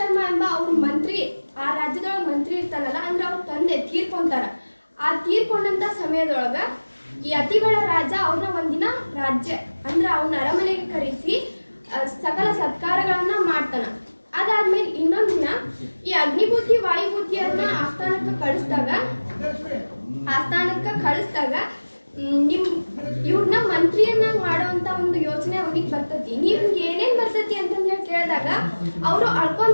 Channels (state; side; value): inverted; both; correlation -1.00